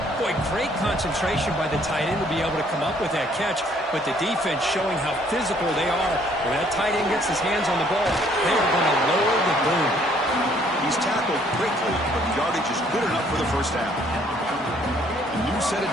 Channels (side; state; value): both; normal; correlation 0.63